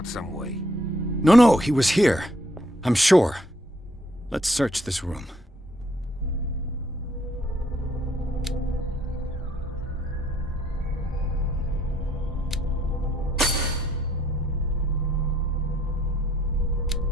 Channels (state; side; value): normal; both; correlation 0.67